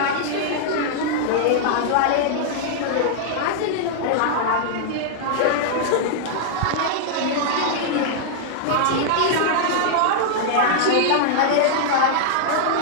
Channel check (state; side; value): different; both; correlation -0.01